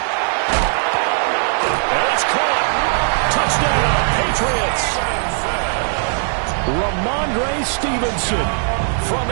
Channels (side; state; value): left; silent; digital silence